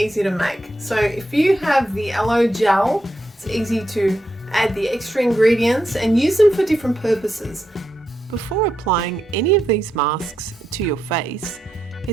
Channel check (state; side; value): normal; both; correlation 0.84